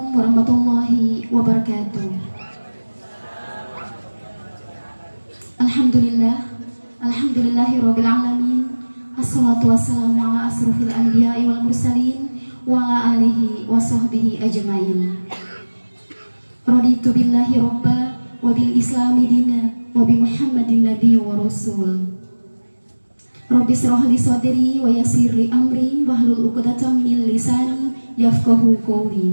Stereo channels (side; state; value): both; inverted; correlation -1.00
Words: warahmatullahi wabarakatuh. Alhamdulillahirabbil alamin. Assalatu wassalamu ala asrofil anbiya'i wal mursalin wa ala alihi wa sahbihi ajmain. Raditu billahi robba wa bil islami dina wa bi muhammadin nabi wa rasul. Rabbi shrah li sadri wa yassir li amri wahlul 'uqdatam min lisani yafqahu